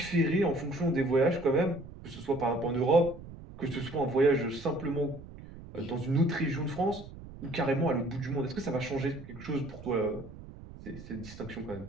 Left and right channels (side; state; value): right; noise; rumble, 15 dB below the sound